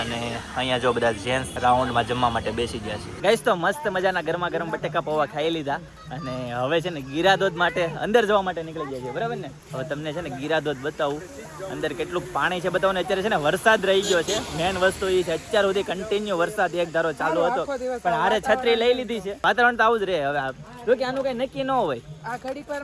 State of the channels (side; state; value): both; identical; correlation 1.00